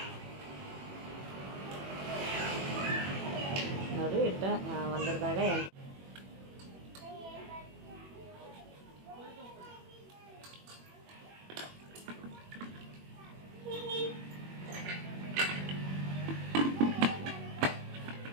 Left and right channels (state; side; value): late; left; 21 ms